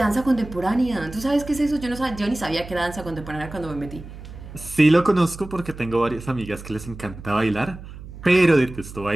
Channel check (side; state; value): right; noise; hum, 14 dB below the sound